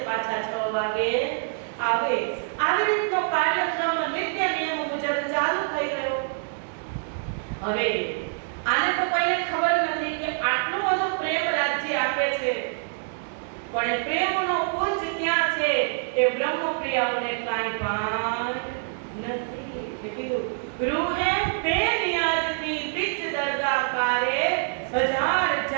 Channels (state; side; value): silent; left; 61 dB below the other